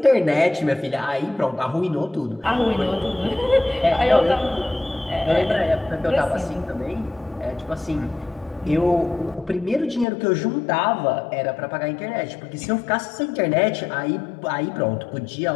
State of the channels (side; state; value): right; drops out; at 10.1 s